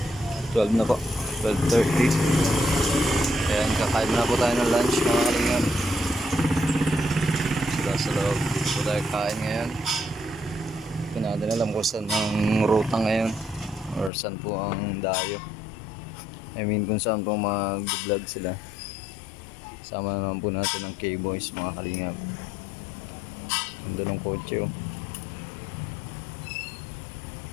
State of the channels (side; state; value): right; drops out; at 14.1 s